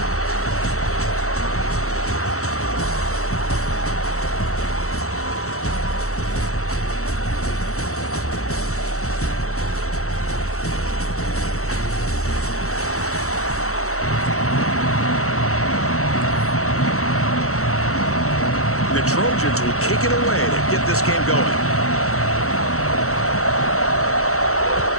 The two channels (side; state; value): right; late; 0.64 ms